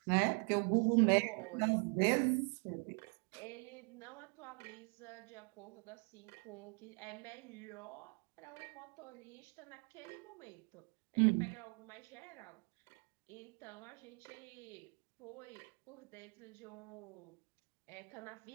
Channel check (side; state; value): left; quieter; 38.3 dB